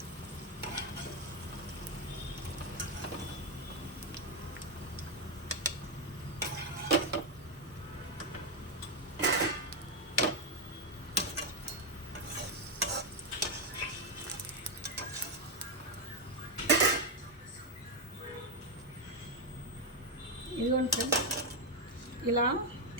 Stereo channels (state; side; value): normal; both; correlation 0.03